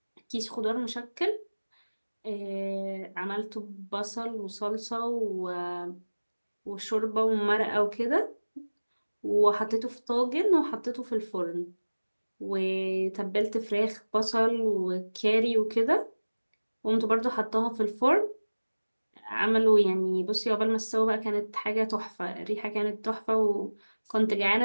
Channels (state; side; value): inverted; both; correlation -1.00